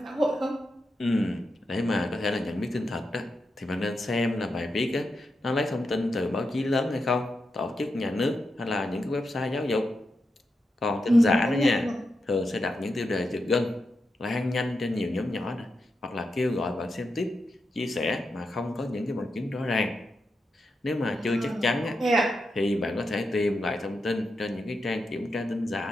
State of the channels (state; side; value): normal; both; correlation 0.87